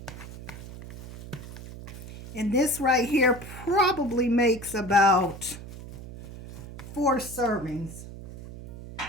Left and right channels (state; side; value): noise; right; hum, 13 dB below the sound